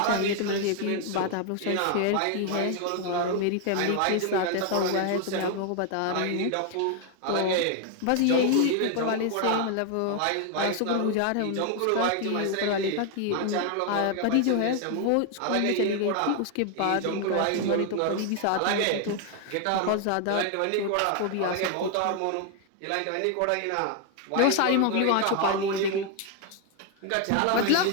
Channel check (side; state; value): both; different; correlation 0.00